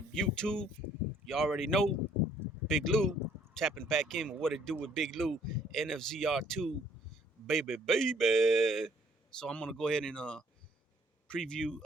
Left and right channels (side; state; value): both; normal; correlation 0.62